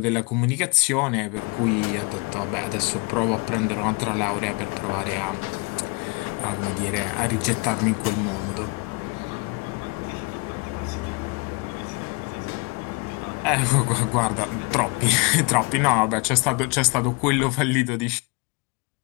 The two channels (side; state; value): right; quieter; 29.3 dB